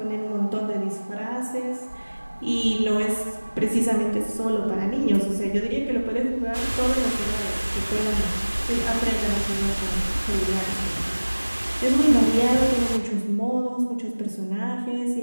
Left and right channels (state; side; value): inverted; both; correlation -1.00